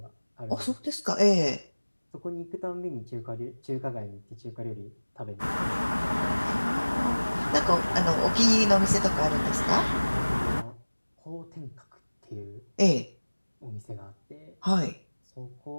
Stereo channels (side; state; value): both; inverted; correlation -1.00